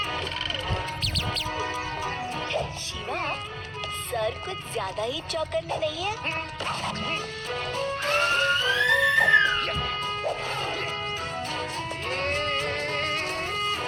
शिवा, सर कुछ ज्यादा ही चौकन्ने नहीं है?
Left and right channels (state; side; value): identical; both; correlation 1.00